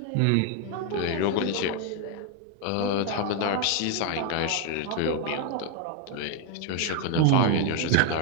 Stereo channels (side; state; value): both; different; correlation 0.01